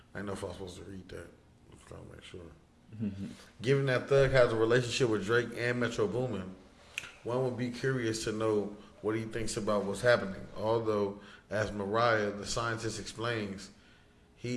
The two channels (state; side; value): identical; both; correlation 1.00